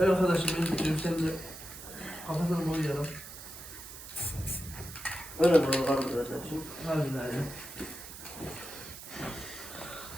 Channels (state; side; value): noise; right; hiss, 13 dB below the sound